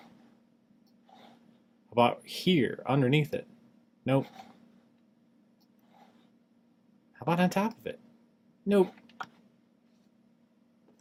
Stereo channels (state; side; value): identical; both; correlation 1.00